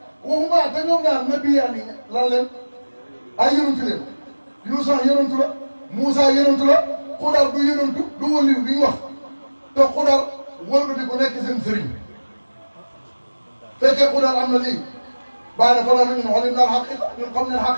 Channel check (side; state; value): both; inverted; correlation -1.00